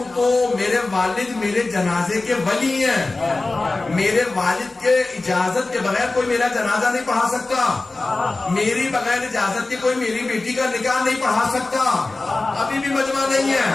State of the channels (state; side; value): quieter; right; 3.3 dB